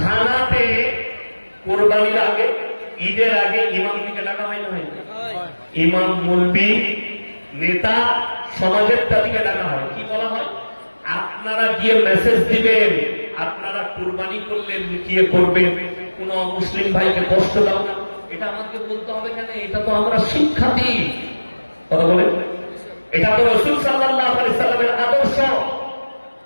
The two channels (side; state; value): both; inverted; correlation -1.00